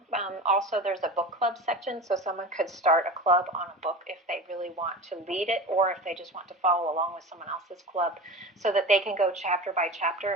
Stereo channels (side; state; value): both; normal; correlation 0.31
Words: Also, there's a book club section, so someone could start a club on a book if they really want to lead it, or if they just want to follow along with someone else's club, so that they can go chapter by chapter